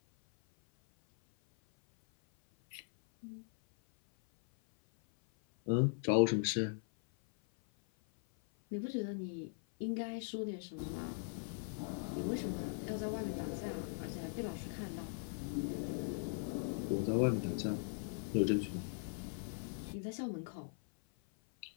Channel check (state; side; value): silent; right; 51 dB below the other